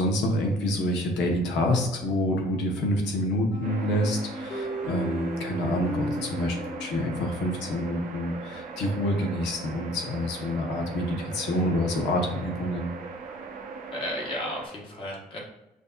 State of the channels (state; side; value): normal; both; correlation 0.52